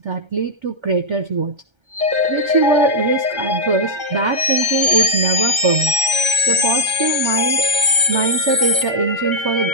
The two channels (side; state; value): left; late; 1.3 ms